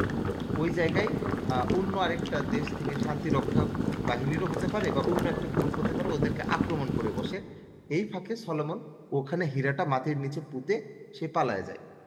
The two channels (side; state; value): both; identical; correlation 1.00